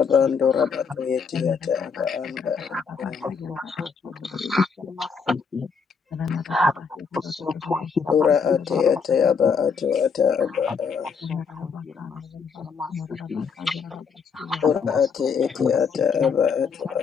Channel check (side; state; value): right; quieter; 5.9 dB